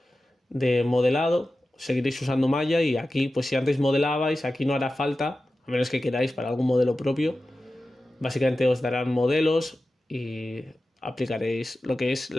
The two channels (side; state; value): both; normal; correlation 0.94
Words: de modelado, seguiréis usando Maya y aquí, pues si antes modelabais, aquí no hará falta, a menos que queráis para algún modelo propio, básicamente os darán modelos y aplicaréis lo que es